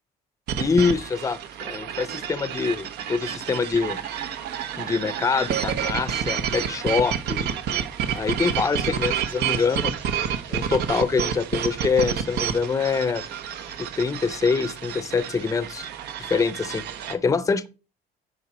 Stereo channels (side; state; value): both; normal; correlation 0.52